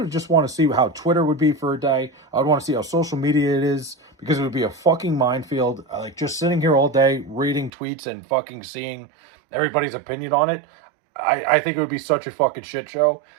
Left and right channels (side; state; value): left; drops out; at 7.7 s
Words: just want to see how Twitter would be for a day. I would want to see how social media it is, because it would be a fucking minefield. Like just sitting here all day reading tweets and fucking seeing everybody's opinion on it. I think it would be such a fucking shit show.